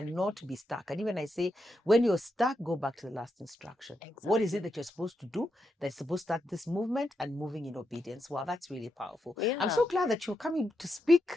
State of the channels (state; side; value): normal; both; correlation 0.84